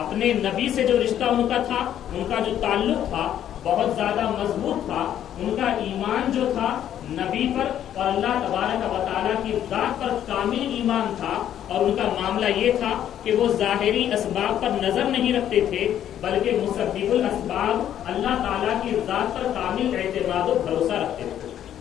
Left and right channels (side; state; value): right; quieter; 10.6 dB